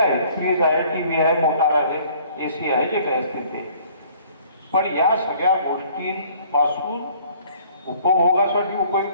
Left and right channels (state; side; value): inverted; both; correlation -0.56